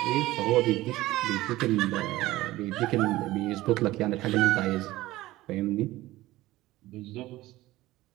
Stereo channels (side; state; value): left; quieter; 17.3 dB